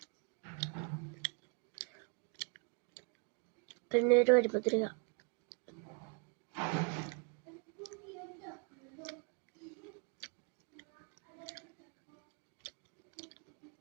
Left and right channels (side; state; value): left; quieter; 35.4 dB